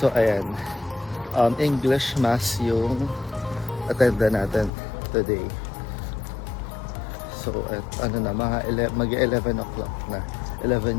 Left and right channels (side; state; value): right; drops out; at 4.7 s